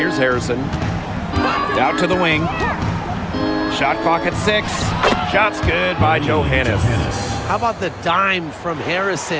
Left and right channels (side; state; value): both; identical; correlation 1.00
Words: Harrison. Out to the wing. Shot clock at 6. Shot's good by Johannes. How about the dime from